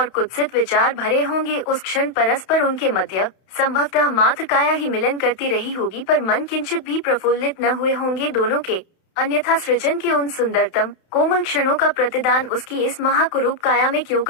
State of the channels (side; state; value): right; late; 31 ms